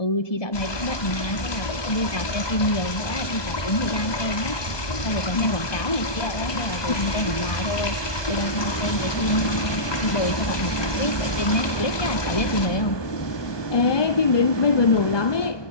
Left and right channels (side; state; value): right; late; 1.2 ms